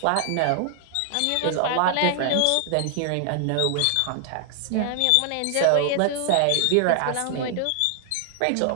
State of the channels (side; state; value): both; different; correlation 0.00